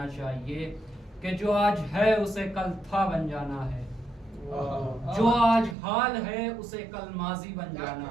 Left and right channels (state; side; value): drops out; left; at 5.8 s